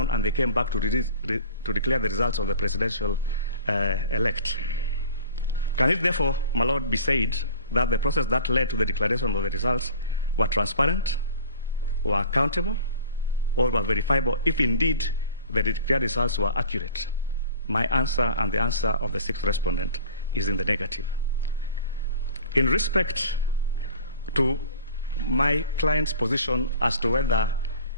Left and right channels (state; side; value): inverted; both; correlation -0.44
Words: and they came back to declare the results of the presidential elect. Can it therefore, my lord, be said that the process that led to the declaration of the results were transparent, were accountable, or were verifiable if indeed the declared results were accurate? My answer and the answer of the sixth respondent is in the negative. In respect to my client's position as to whether